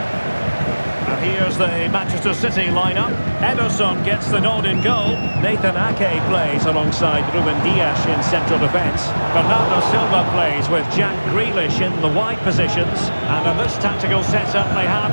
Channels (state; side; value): inverted; both; correlation -1.00